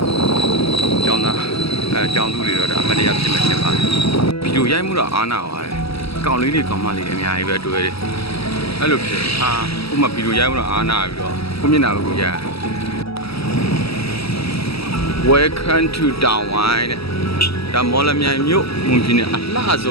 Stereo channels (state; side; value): late; right; 0.76 ms